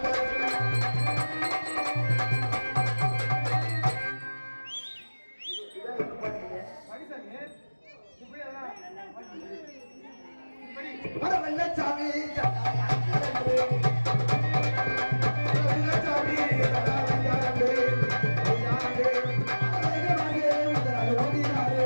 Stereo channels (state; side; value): inverted; both; correlation -1.00